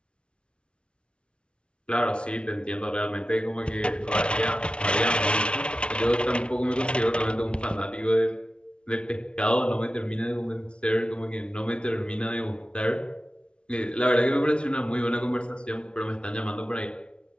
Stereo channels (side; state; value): right; late; 0.058 ms